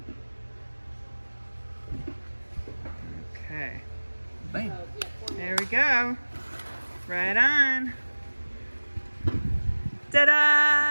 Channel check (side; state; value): both; inverted; correlation -1.00